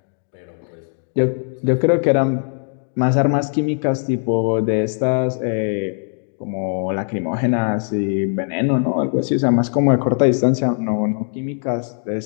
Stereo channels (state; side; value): silent; right; 66 dB below the other